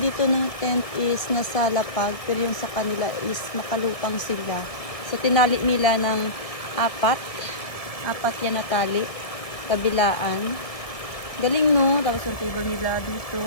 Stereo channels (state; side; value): late; right; 1.7 ms